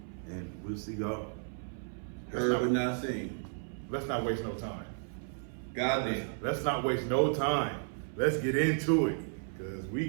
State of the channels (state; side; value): silent; left; 55 dB below the other